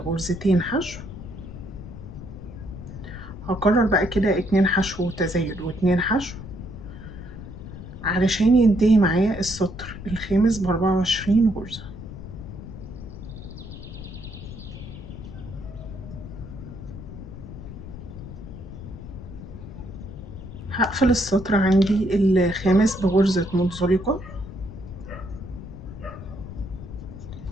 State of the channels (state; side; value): noise; left; rumble, 12 dB below the sound